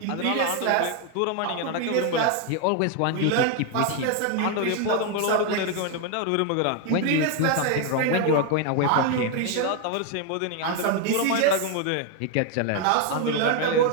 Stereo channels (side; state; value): both; different; correlation 0.01